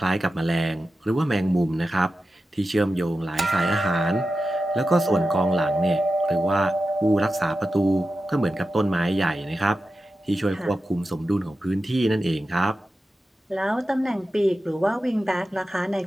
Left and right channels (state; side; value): normal; both; correlation 0.92